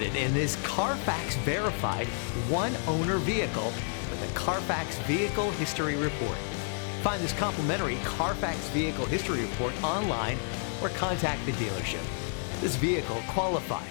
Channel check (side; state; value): right; silent; 58 dB below the other